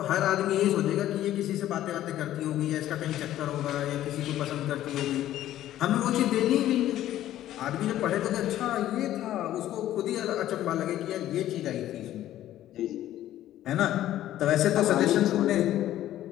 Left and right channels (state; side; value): quieter; right; 13.1 dB